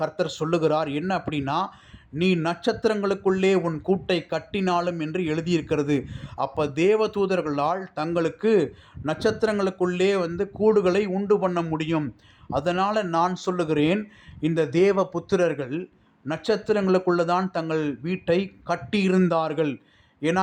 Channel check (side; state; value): both; identical; correlation 1.00